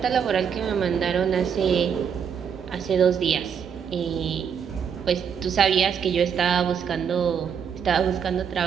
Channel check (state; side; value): quieter; left; 7.3 dB